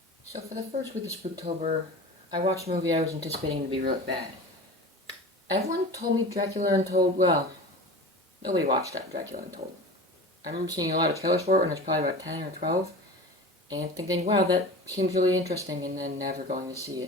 So for the first week of Spooktober, I watched a movie I was anticipating to be really bad. Everyone told me Dracula Untold, well, nobody watched that Dracula Untold. I remember seeing a lot of trailers for it when I was probably about 10 or 12, and thinking, wow, that seems really interesting, and then never going to see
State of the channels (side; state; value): both; normal; correlation 0.34